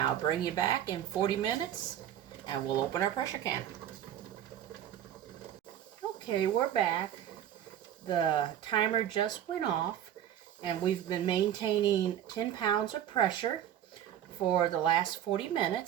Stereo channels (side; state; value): left; quieter; 10.8 dB